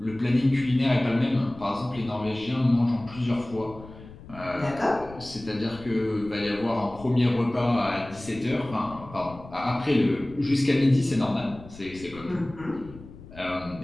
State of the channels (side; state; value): left; noise; rumble, 18 dB below the sound